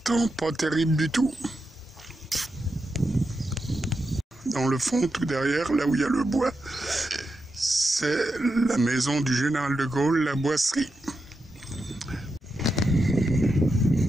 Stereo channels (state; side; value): normal; both; correlation 0.87